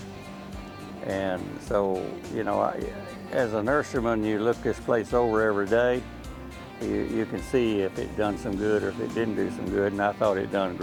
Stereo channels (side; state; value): both; identical; correlation 1.00